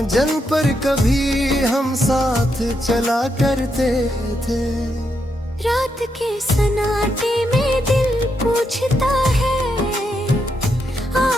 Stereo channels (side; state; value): both; normal; correlation 0.81